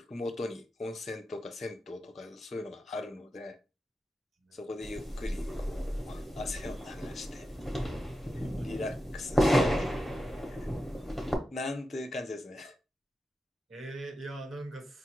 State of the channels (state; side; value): normal; both; correlation 0.90